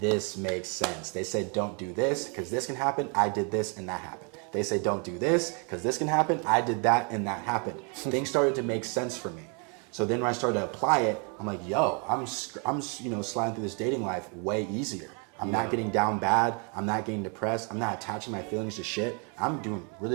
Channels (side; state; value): left; quieter; 36.2 dB